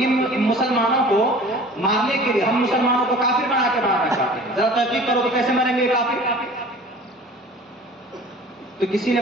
مسلمانوں کو مارنے کے لیے، ہم مسلمانوں کو کافر بنا کے مارنا چاہتے ہیں. ذرا تحقیق کرو کہ کیسے مریں گے یہ کافر؟ تو کسی نے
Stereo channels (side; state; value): both; normal; correlation 0.45